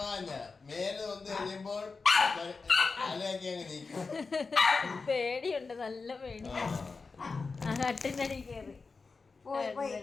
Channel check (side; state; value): right; quieter; 4.4 dB